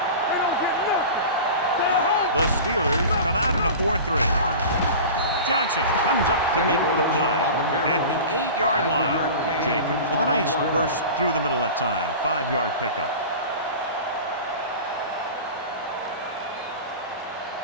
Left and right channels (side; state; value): both; inverted; correlation -0.34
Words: The Steelers come out in a 4-3. Johnson comes up to make the play at the 8-yard line. Jacobs with a nice burst through the middle that time. 5-yard pickup.